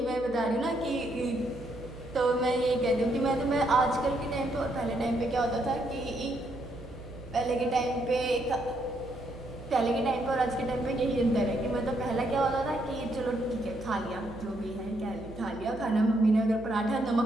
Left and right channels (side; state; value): right; noise; hum, 16 dB below the sound